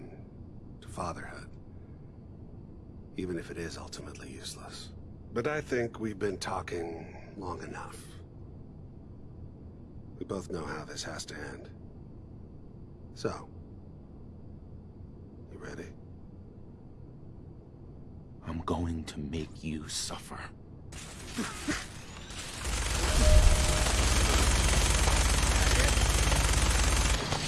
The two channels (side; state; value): both; identical; correlation 1.00